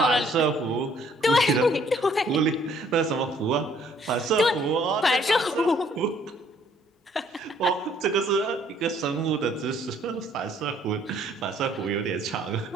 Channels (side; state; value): both; normal; correlation 0.62